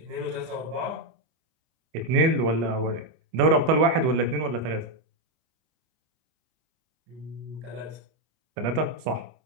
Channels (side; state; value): left; late; 25 ms